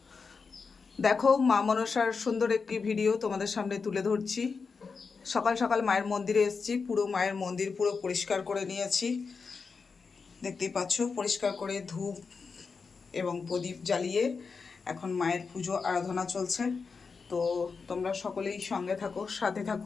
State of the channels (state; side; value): quieter; right; 5.0 dB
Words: দেখো, মা মনসার সুন্দর একটি ভিডিও তোমাদের সামনে তুলে ধরছি। সকাল সকাল মায়ের মন্দিরে এসেছি, পুরো মায়ের মন্দির পুরো পরিষ্কার করে নিয়েছি। দেখতেই পাচ্ছ, পরিষ্কার করে ধূপ এবং প্রদীপ জ্বালিয়ে এখন মায়ের পুজো আরাধনা চলছে। তো তোমরা সকলেই সঙ্গে থাকো, সাথে